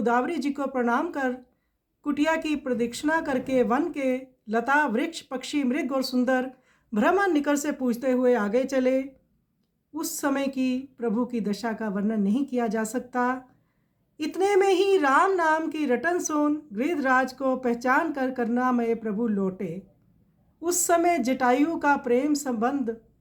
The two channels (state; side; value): identical; both; correlation 1.00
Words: जी को प्रणाम कर कुटिया की प्रदक्षिणा करके वन के लता वृक्ष पक्षी मृग और सुंदर भ्रमण निकट से पूछते हुए आगे चले। उस समय की प्रभु की दशा का वर्णन नहीं किया जा सकता। इतने में ही राम नाम की रटन सुन गिरिधराज को पहचान कर करुणामय प्रभु लौटे। उस समय जटायु का प्रेम संबंध